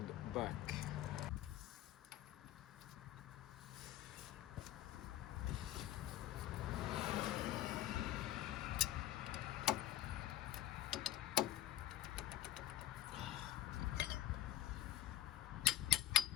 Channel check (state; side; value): quieter; right; 13.0 dB